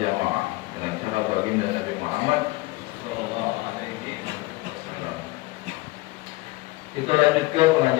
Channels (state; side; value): quieter; right; 20.8 dB